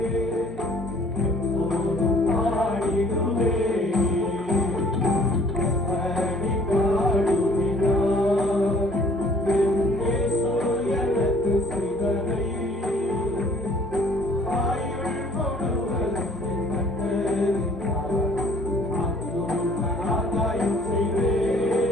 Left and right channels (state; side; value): normal; both; correlation 0.57